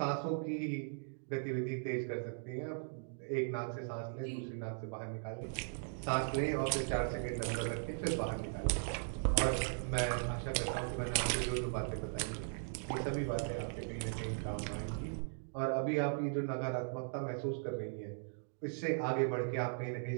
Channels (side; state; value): left; silent; digital silence